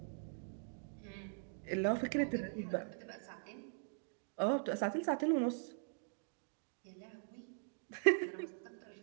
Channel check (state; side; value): silent; left; digital silence